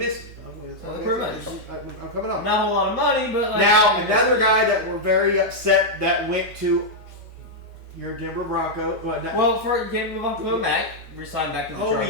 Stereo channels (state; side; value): noise; right; rumble, 29 dB below the sound